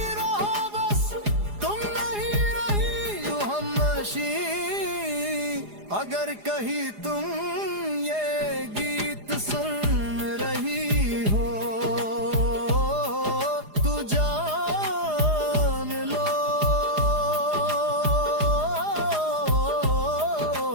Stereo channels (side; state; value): left; late; 4.9 ms